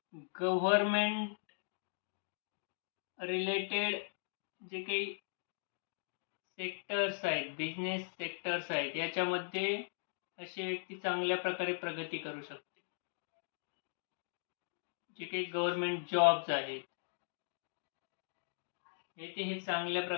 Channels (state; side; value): silent; right; digital silence